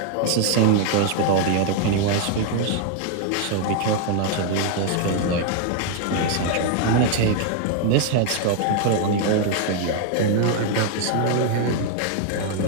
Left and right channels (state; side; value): different; both; correlation 0.01